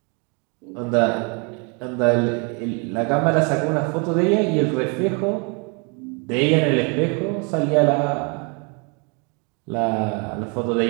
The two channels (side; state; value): left; quieter; 33.9 dB